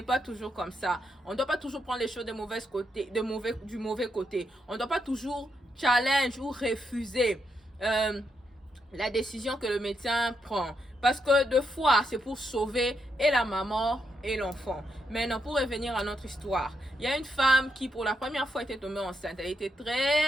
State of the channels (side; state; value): both; normal; correlation 0.81